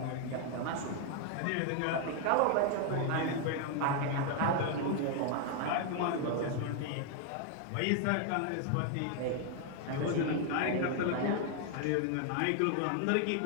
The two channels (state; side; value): different; both; correlation 0.00